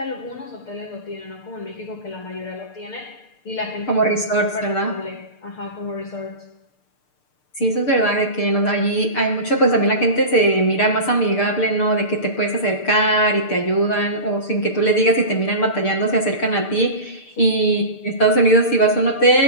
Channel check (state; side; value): late; right; 6.7 ms